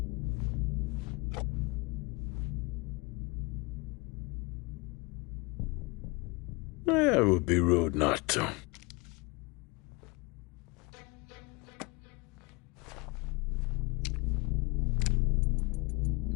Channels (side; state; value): right; quieter; 27.2 dB